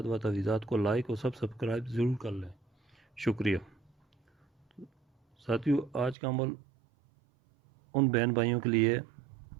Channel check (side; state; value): left; drops out; at 6.2 s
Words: و تعویذات کو لائک اور سبسکرائب ضرور کر لیں، شکریہ۔ ساتھیو، آج کا عمل ان بہن بھائیوں کے لیے